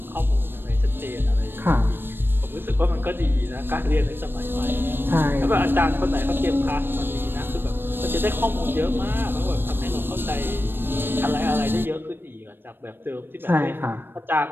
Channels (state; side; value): late; left; 0.098 ms